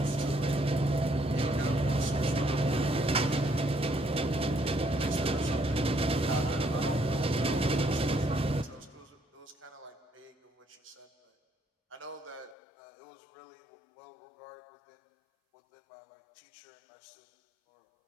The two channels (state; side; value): drops out; right; at 12.6 s